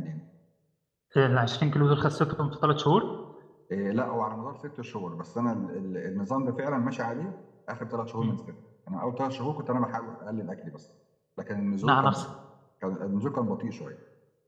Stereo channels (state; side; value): identical; both; correlation 1.00